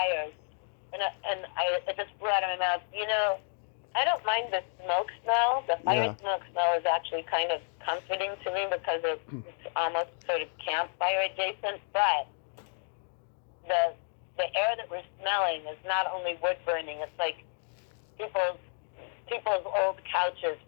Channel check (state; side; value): silent; right; 57 dB below the other